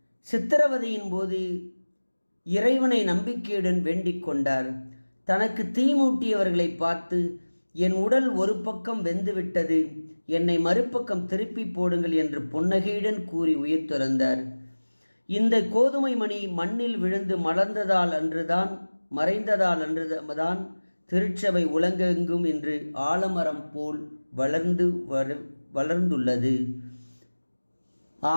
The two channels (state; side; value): inverted; both; correlation -1.00